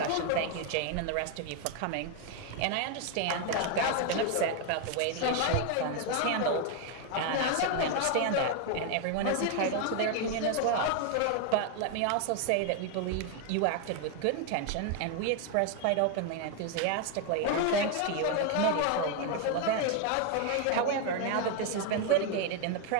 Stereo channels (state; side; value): different; both; correlation 0.01